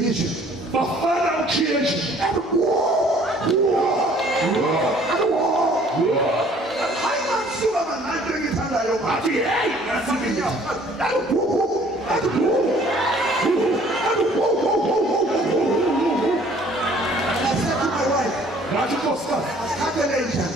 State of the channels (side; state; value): both; normal; correlation 0.56